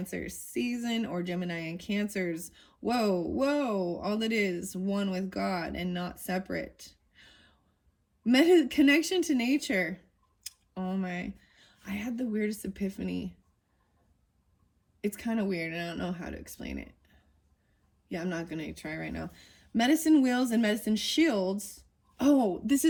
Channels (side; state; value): both; identical; correlation 1.00